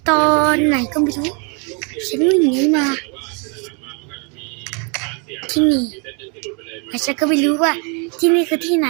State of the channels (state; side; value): quieter; left; 35.3 dB